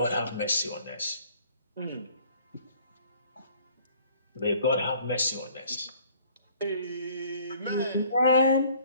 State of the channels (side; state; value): both; inverted; correlation -0.57